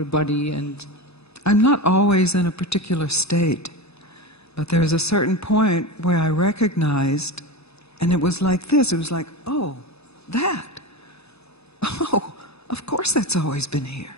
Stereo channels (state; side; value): normal; both; correlation 0.23